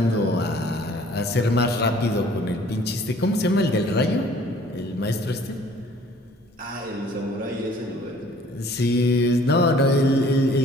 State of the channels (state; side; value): normal; both; correlation 0.55